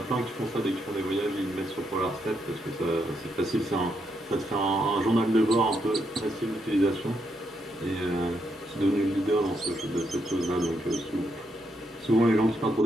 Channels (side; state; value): both; normal; correlation 0.79